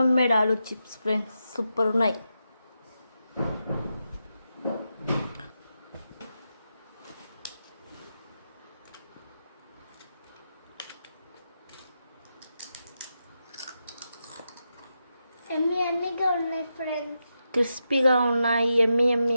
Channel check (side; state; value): both; inverted; correlation -0.87